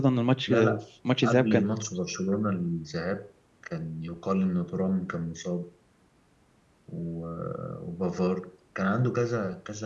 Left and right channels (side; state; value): both; identical; correlation 1.00